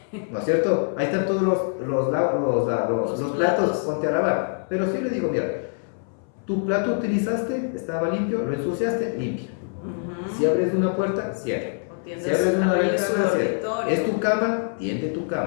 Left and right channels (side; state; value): right; silent; 62 dB below the other